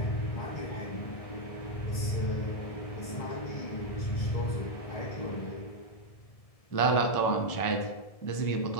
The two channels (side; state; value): right; late; 1.7 ms